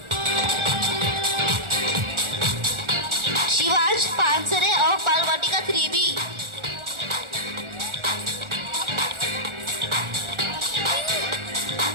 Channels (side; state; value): left; late; 1.4 ms